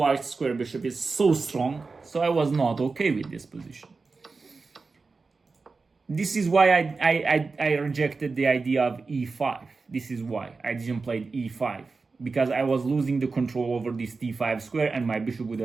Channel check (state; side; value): quieter; left; 4.2 dB